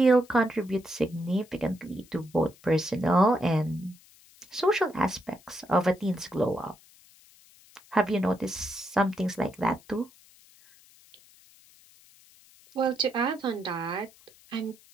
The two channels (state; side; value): noise; left; hiss, 26 dB below the sound